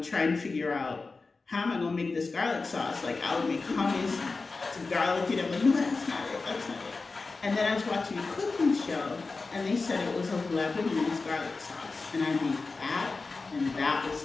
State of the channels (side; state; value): right; quieter; 3.9 dB